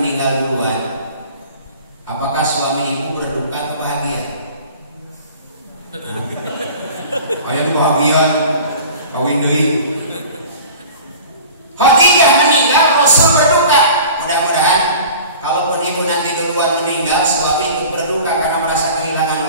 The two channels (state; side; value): inverted; both; correlation -0.42